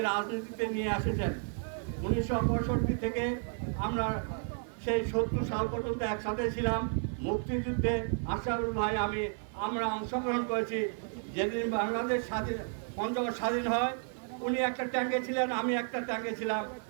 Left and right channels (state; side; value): silent; left; 56 dB below the other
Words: রাজনীতিতে নিয়ে এসেছেন। 1965 থেকে আমরা সেই 70 সাল পর্যন্ত একসাথে ছিলাম। মুক্তিযুদ্ধে আশরাফুল ভাই আমরা অংশগ্রহণ করেছি। যেদিন বাংলাদেশ পঞ্চগড় স্বাধীন হয়, উনি একটা ট্যাঙ্কে ছিলেন, আমি একটা ট্যাঙ্কে ছিলাম।